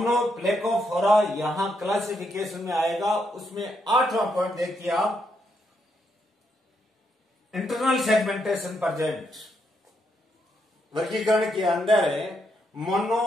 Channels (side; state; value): both; normal; correlation 0.78